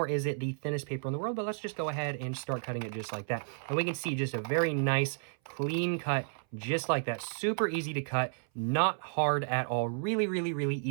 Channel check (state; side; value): silent; left; 56 dB below the other